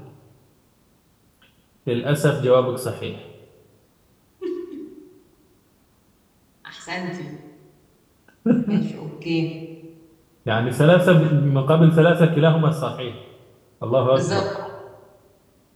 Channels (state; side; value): identical; both; correlation 1.00